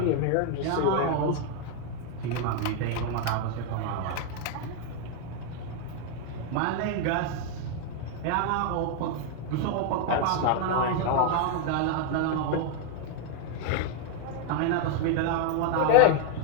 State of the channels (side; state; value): both; different; correlation 0.00